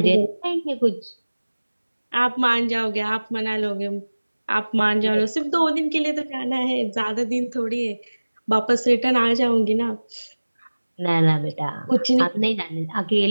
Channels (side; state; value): both; inverted; correlation -1.00